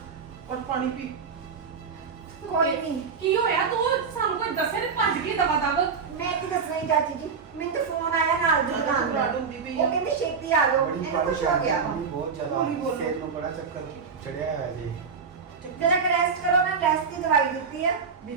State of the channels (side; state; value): left; quieter; 5.7 dB